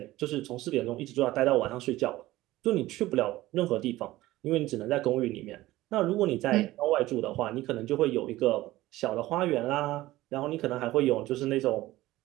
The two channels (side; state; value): left; quieter; 17.0 dB